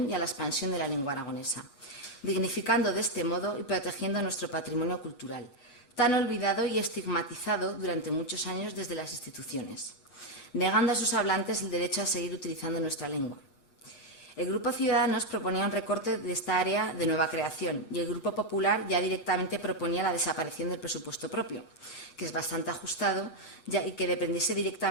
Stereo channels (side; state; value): right; late; 8.2 ms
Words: y a la expansión de la lengua aragonesa, dignificando de este modo y protegiendo nuestro patrimonio cultural, tan olvidado y estigmatizado durante muchos años desde las instituciones, negando a sus hablantes el derecho a seguir utilizando nuestra lengua. El Grupo Ciudadanos proponía un recorte de esta área de nueva creación y el Grupo Popular ya directamente proponía la desaparición del presupuesto propio, que es bastante ajustado y que dependiese